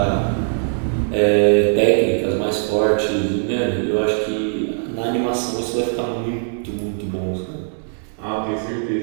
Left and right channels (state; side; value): silent; left; 61 dB below the other